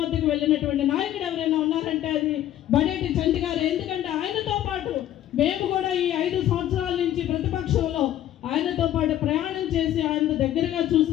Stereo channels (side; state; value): right; quieter; 12.3 dB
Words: వద్దకు వెళ్ళినటువంటి నాయకుడు ఎవరైనా ఉన్నారంటే అది బడేటి చంటి గారు. ఎందుకంటే ఆయనతో పాటు మేము కూడా ఈ 5 సంవత్సరాల నుంచి ప్రతిపక్షంలో ఆయనతో పాటు ప్రయాణం చేసి ఆయన దగ్గరగా